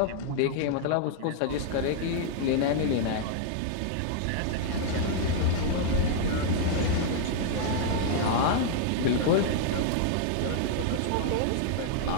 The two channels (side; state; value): both; different; correlation -0.01